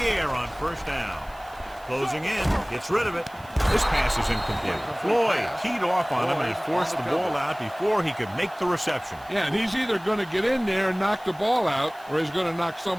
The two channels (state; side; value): noise; right; hiss, 26 dB below the sound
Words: air on first down. Closing in, gets rid of it. This pass is incomplete. Floyd teed off on him and forced the ball out before he could make the reception. Yeah, and he's either going to get in there and knock the ball out, or he's going to knock